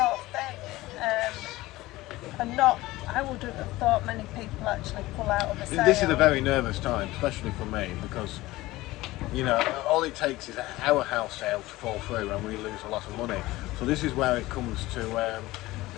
thing, and I wouldn't have thought many people actually pull out of a sale. This is a very nervous time, especially for me, because all it takes is our house sale to fall through and we lose a lot of money. So this is where it comes to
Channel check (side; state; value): right; quieter; 18.5 dB